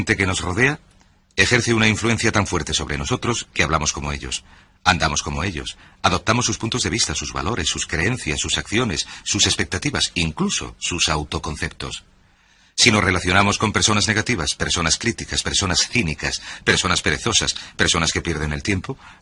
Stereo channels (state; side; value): identical; both; correlation 1.00